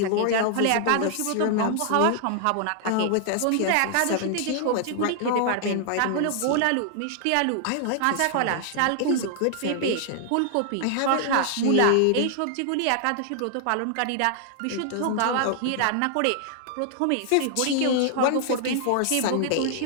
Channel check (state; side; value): different; both; correlation 0.00